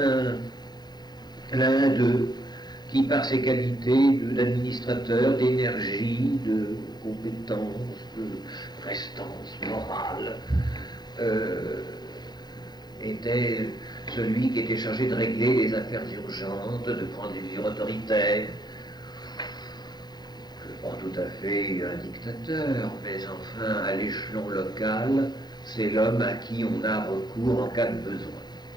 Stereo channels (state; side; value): late; right; 0.20 ms